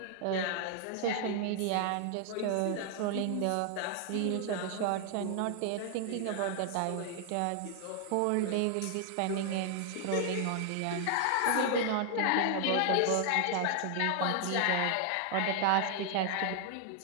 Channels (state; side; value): different; both; correlation 0.00